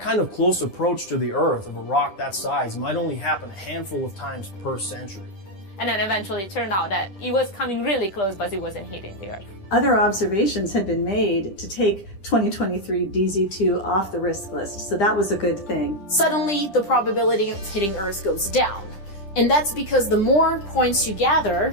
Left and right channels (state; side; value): late; right; 10 ms